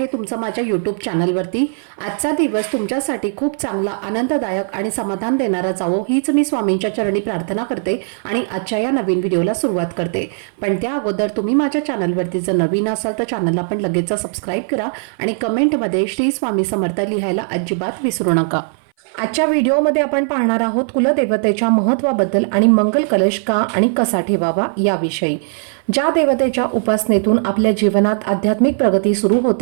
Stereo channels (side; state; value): left; silent; 59 dB below the other